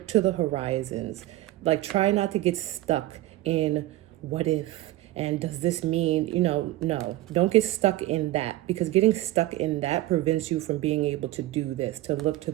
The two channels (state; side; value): quieter; left; 16.3 dB